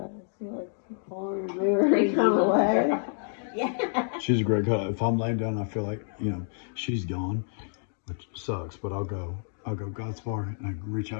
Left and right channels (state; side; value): silent; right; digital silence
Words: He likes to pull her mirror and come away. Yeah. She's a great color. If I'm laying down, I feel like, you know, she's gone, which sucks, but I'll go Godspar, and I reach